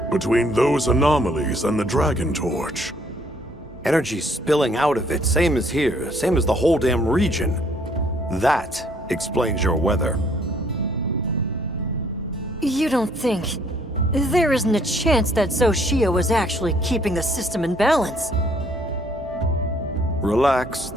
between those anomalies and the Dragon Torch. Energy spilling out of it, same as here, same as the whole damn region. That explains your weather. You don't think... There isn't a chance that Xochitl was actually keeping the system in balance. Relax,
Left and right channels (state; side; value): normal; both; correlation 0.63